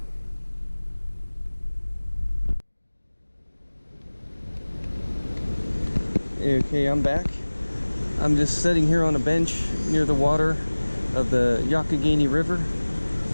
Okay, I'm back. I'm just sitting here on a bench near the water of the Youghiogheny River,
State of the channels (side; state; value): both; inverted; correlation -1.00